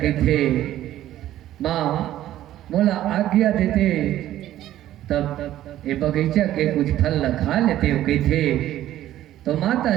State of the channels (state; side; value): quieter; left; 13.2 dB